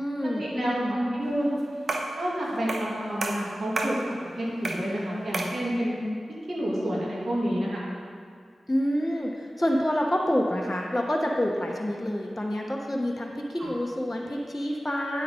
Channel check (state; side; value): normal; both; correlation 0.95